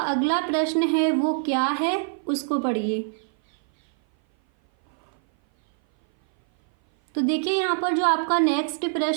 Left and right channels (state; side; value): silent; left; 57 dB below the other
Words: अगला प्रश्न है वो क्या है, उसको पढ़िए। तो देखिए यहाँ पर जो आपका नेक्स्ट